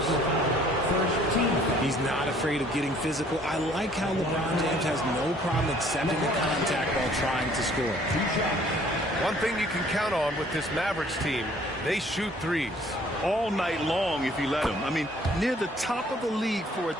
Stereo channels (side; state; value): both; normal; correlation 0.58